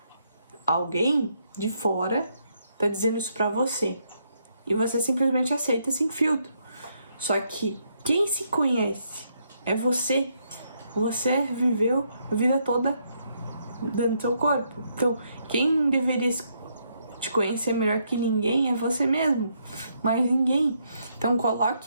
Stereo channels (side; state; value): both; inverted; correlation -0.75